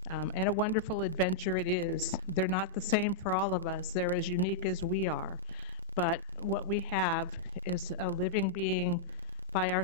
And a wonderful adventure it is. They're not the same for all of us. They're as unique as we are. But what we have is a living being by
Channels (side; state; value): right; quieter; 3.1 dB